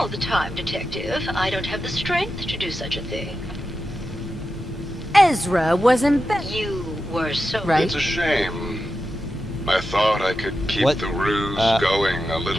the time, Detective. I don't have the strength to do such a thing. Ezra was embezzling. You were so... Right. It's a shame. I thought I could keep What? the ruse going a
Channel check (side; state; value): both; normal; correlation 0.90